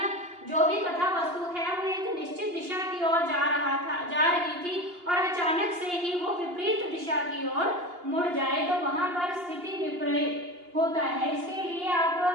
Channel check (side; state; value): left; late; 2.8 ms